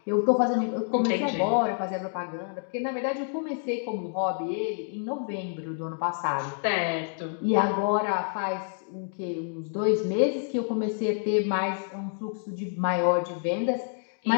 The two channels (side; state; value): right; silent; 59 dB below the other